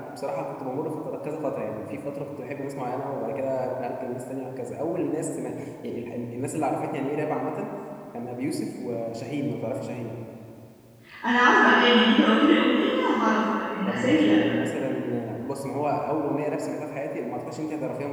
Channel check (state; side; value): identical; both; correlation 1.00